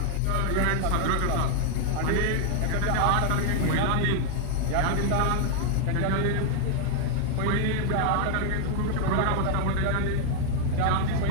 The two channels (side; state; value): both; different; correlation 0.00